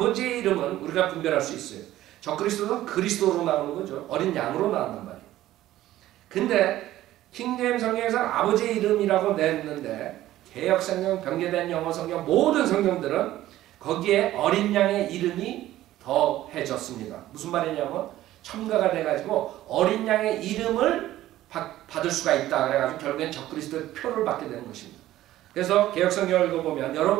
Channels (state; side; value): quieter; left; 14.5 dB